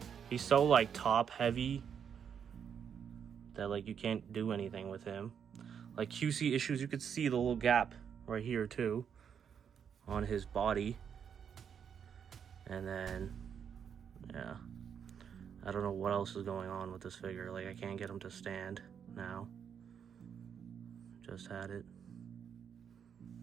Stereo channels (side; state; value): left; quieter; 7.7 dB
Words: He's so like top heavy that like you can't do anything with him. Like QC issues, you could see the little gap right here too on his body. And then yeah, I don't know what else is going on with this figure. Like I can't get him to stand now. Just had it.